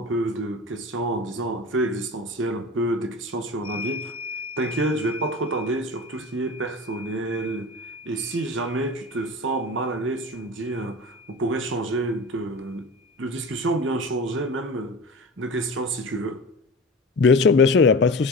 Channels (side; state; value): both; normal; correlation 0.32